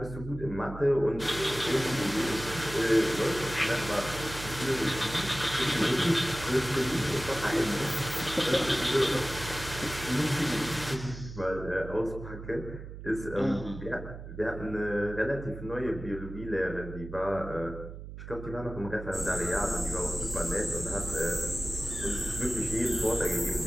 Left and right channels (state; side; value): noise; right; hum, 11 dB below the sound